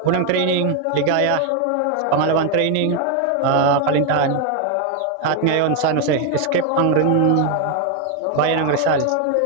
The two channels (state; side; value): different; both; correlation 0.01